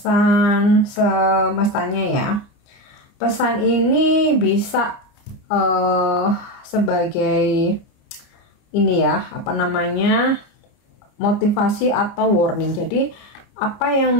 semestanya ya. Pesan ini bisa sebagai ini ya, apa namanya, motivasi atau warning. Jadi apa yang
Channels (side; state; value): right; late; 29 ms